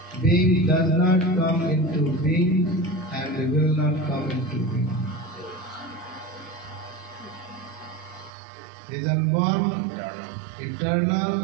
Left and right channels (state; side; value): drops out; left; at 8.3 s